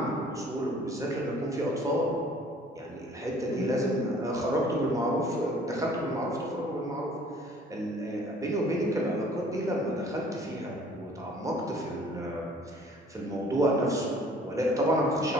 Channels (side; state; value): both; normal; correlation 0.54